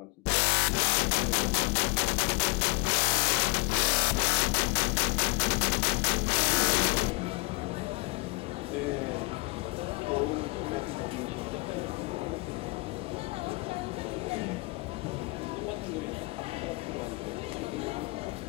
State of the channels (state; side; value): quieter; right; 27.0 dB